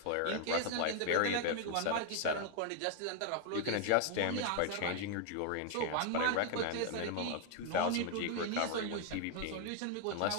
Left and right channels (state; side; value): different; both; correlation 0.00